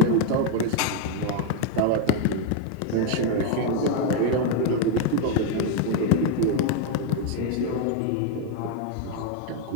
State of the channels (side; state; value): both; different; correlation 0.01